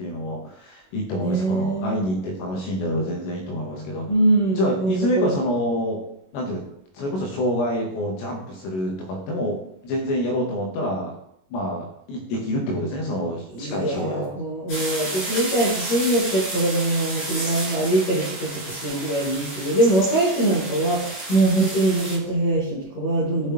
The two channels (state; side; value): late; right; 21 ms